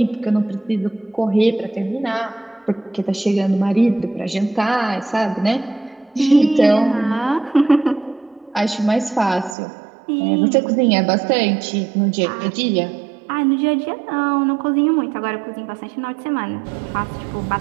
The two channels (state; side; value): drops out; left; at 9.6 s